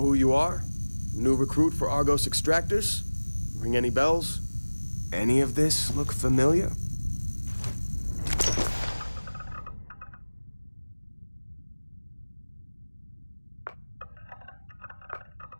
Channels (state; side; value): inverted; both; correlation -1.00